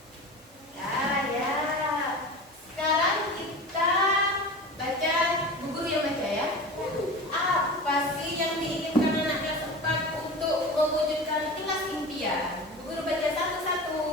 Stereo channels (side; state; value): both; normal; correlation 0.32